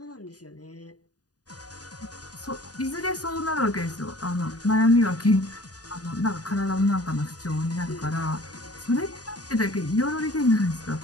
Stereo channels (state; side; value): late; right; 0.68 ms